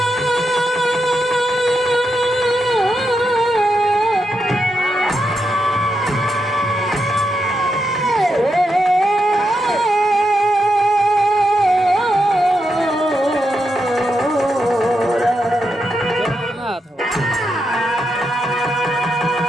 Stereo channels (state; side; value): normal; both; correlation 0.84